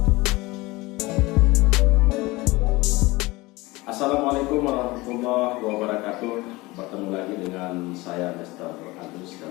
warahmatullahi wabarakatuh. Bertemu lagi dengan saya Mr. Agus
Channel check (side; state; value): right; quieter; 21.6 dB